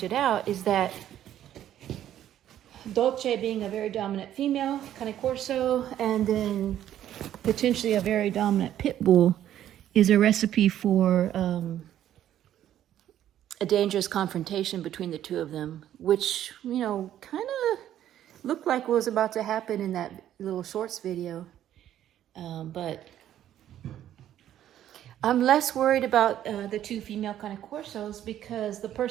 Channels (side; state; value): left; quieter; 11.5 dB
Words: out, is that Dolce being a very dominant female, Cane Corso, and then potentially a very dominant pit bull is a recipe for a dangerous confrontation between the two of them, which, you know, kind of looked like was about to happen in that little shorts video. But I'm less worried about the two female Cane Corsos because the